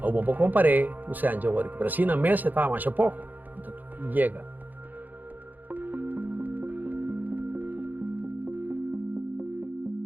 Ou bom comparei o Sanja work, pero assim na mesa tá mais pouco. Então chega.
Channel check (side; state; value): left; late; 0.084 ms